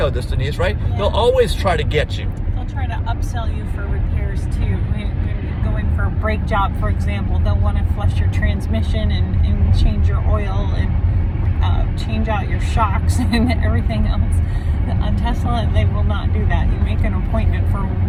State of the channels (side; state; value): both; identical; correlation 1.00